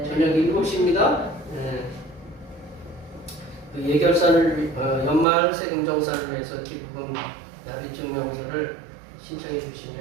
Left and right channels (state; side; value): drops out; left; at 5.2 s